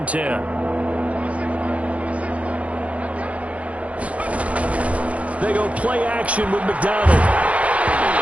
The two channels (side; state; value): left; late; 0.065 ms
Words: 10. They go play action with McDonald.